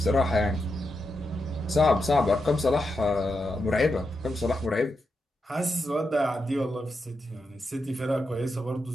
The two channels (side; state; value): both; normal; correlation 0.86